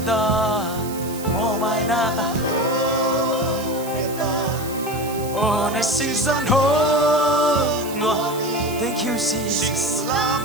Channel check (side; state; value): right; noise; hiss, 13 dB below the sound